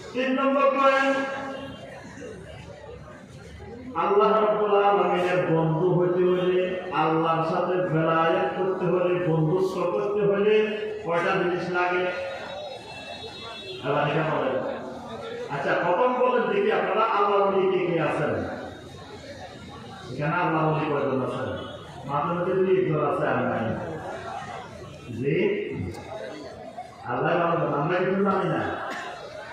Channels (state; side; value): identical; both; correlation 1.00